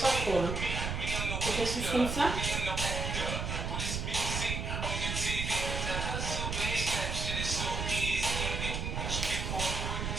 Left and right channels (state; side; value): noise; right; rumble, 2 dB below the sound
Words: trop. Hein. Faut qu'on suive comme ça.